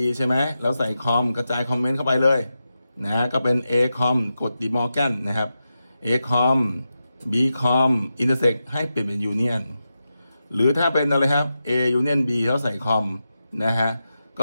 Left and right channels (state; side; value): inverted; both; correlation -0.90